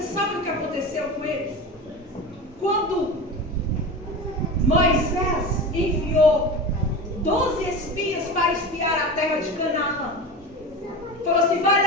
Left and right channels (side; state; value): both; normal; correlation 0.28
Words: sabe o que aconteceu com eles? quando Moisés enviou 12 espias para espiar a terra de Canaã, falou assim: vai